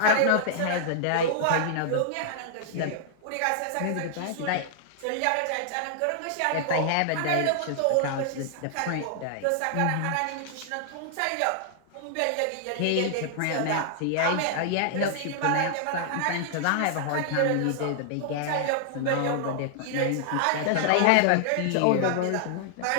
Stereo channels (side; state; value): both; different; correlation -0.01